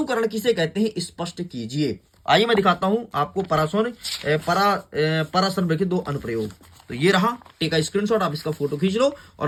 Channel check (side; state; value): both; identical; correlation 1.00